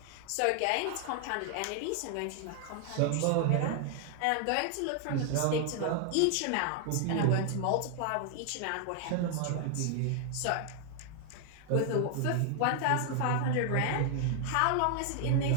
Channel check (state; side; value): different; both; correlation 0.00